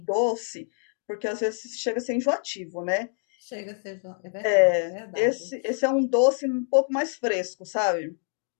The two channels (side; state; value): right; silent; digital silence